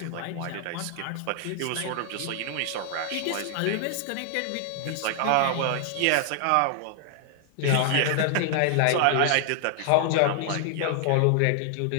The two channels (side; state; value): both; different; correlation 0.00